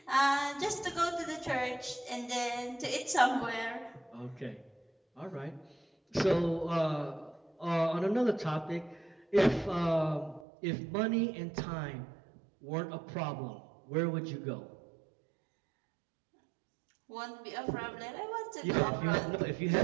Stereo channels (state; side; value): drops out; left; at 10.5 s